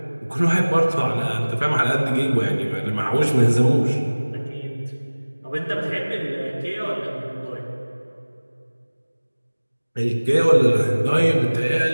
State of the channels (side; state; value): both; inverted; correlation -1.00